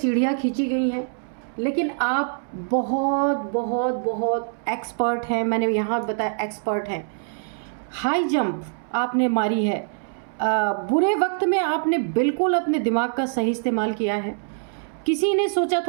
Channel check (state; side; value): silent; left; 63 dB below the other